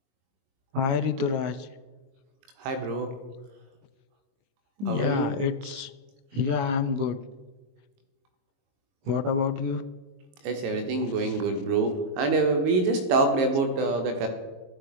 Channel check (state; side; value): late; left; 22 ms